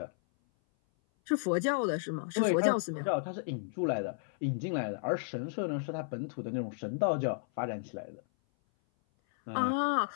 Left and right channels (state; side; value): silent; right; 56 dB below the other